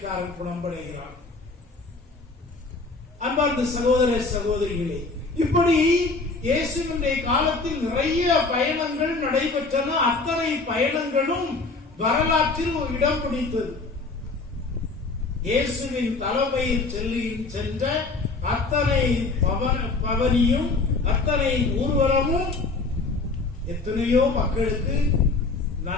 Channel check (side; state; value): right; quieter; 3.7 dB